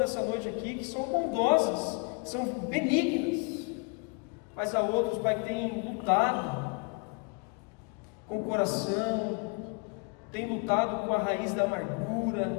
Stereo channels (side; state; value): right; quieter; 35.8 dB